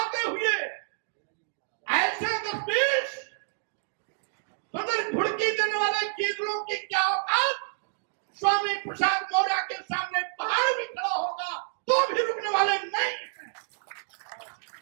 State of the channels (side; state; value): left; silent; digital silence